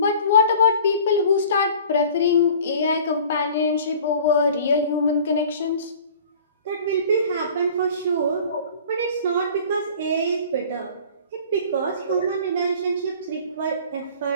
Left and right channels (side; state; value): both; inverted; correlation -0.46